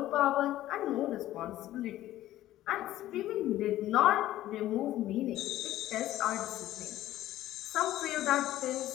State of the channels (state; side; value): quieter; right; 14.3 dB